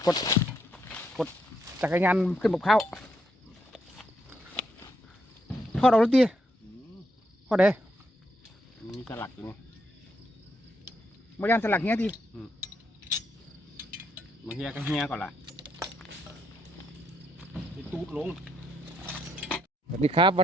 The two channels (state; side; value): normal; both; correlation 0.77